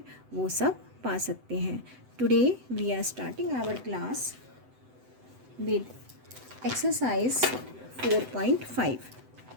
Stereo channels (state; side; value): late; left; 7.9 ms